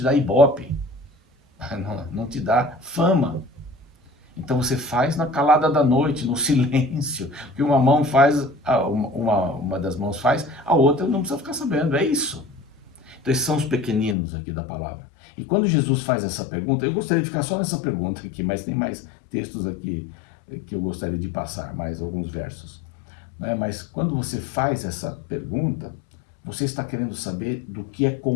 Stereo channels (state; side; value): drops out; right; at 14.2 s